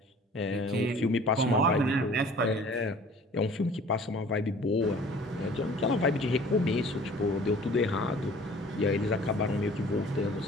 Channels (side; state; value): both; normal; correlation 0.49